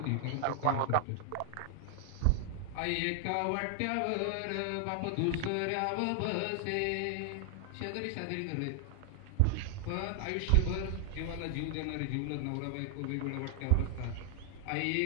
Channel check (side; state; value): both; different; correlation 0.00